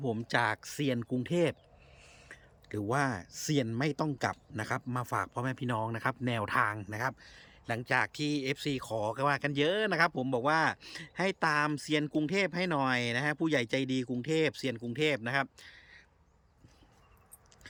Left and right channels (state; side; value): identical; both; correlation 1.00